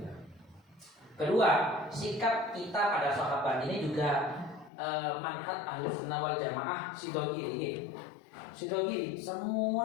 Kedua, sikap kita pada sahabat ini juga manhaj Ahlussunnah wal Jamaah Sidogiri. Sidogiri, semua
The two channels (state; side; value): drops out; right; at 4.7 s